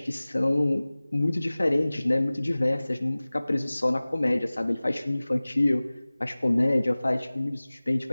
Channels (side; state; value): both; inverted; correlation -0.99